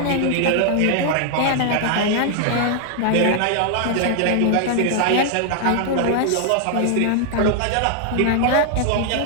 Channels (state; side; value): different; both; correlation 0.00